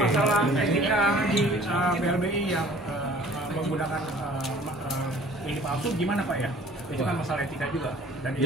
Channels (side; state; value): both; normal; correlation 0.51